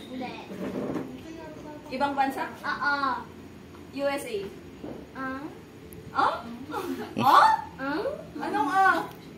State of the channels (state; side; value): identical; both; correlation 1.00